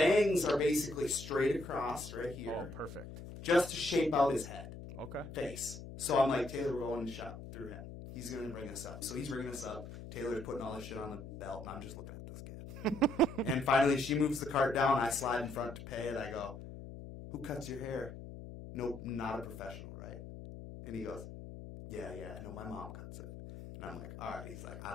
are basically straight across right here, Oh, perfect. just to shape out his head. Okay. Face. So I'm like, Taylor, we're going to shop through him. He's going to bring us up. So he's bringing us up. Taylor's putting all this shit on the belt, and I'm just looking at this kid. And finally, she moves the cart down. I slide in front to pay it. I go, who cuts your hair? No, not a professional, right? And he goes, yeah, no, my mom cuts it. And I'm like, all right. He's like, I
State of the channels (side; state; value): left; noise; hum, 11 dB below the sound